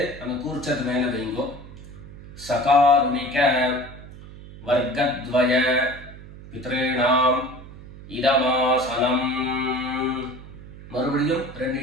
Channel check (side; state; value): right; noise; hum, 16 dB below the sound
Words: அந்த கூர்ச்சத்து மேல வைங்க. சகாருணிக வர்க்கத்வய பித்ருணாம் இதமாசனம். மறுபடியும் 2